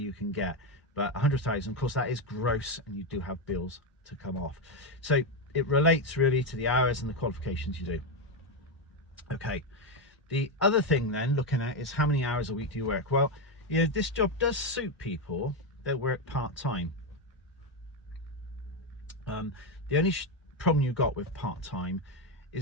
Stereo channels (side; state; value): both; normal; correlation 0.08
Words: can get. But 100,000, of course, that is gross, and you do have bills to come off. So it relates really to the hours and the qualifications you do. Okay, the other thing then looking at is how many hours a week do you work? Well, you know, this job does suit people that work part-time. The only problem you've got with part-time